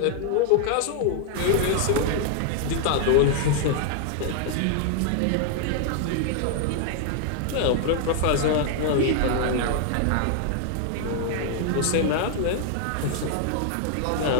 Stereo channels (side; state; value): both; different; correlation 0.00